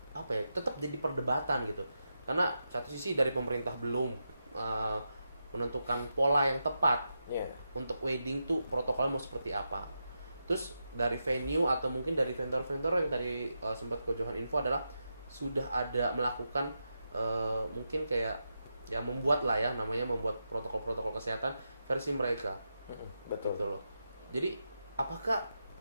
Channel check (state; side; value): inverted; both; correlation -0.87